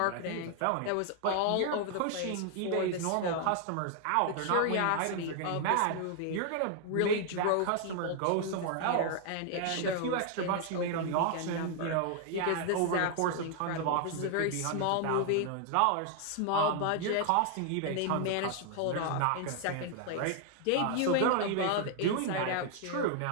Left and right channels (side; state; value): both; different; correlation 0.00